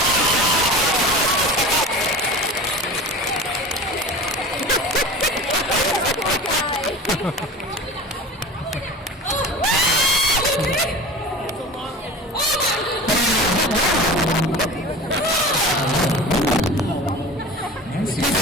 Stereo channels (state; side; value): normal; both; correlation 0.35